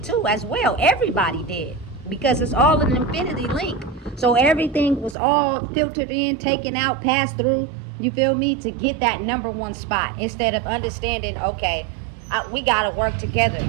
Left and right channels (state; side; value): drops out; left; at 5.2 s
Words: too as well. Everybody did, because it's all an infinity link. So everything was all filtered in, taken out, passed through, you feel me, to get that number one spot, instead of understanding, okay, we got to work together.